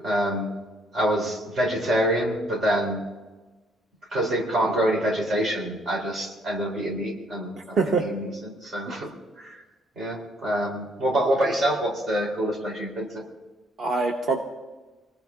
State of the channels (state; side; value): normal; both; correlation 0.66